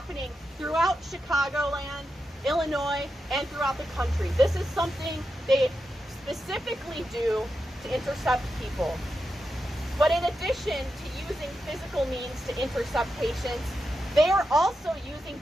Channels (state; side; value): normal; both; correlation 0.88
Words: throughout Chicagoland, Illinois, and throughout the country. This is something they specifically do to intercept people. But in addition to using physical means to intercept patients, they are also using